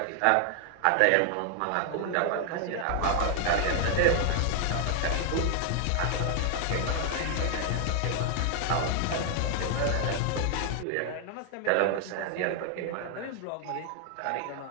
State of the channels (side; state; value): both; different; correlation 0.00